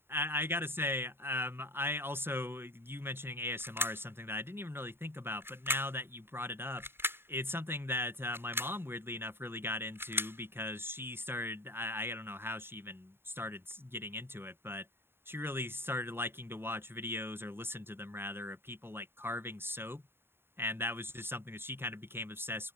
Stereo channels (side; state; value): left; late; 0.11 ms